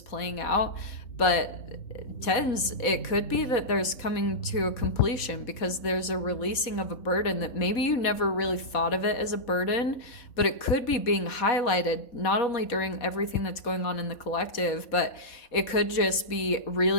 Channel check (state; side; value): late; right; 4.1 ms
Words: playing out. But tens, it could be that there's coming to a completion because there's a releasing of a burden that maybe you never really thought of it as a burden, but it could be being highlighted not only during everything that's going on in the collective, but it could just be